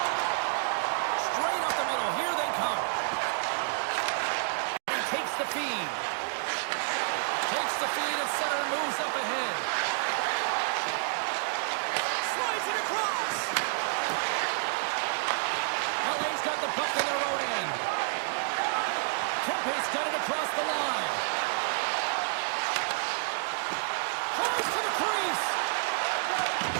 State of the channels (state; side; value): silent; left; digital silence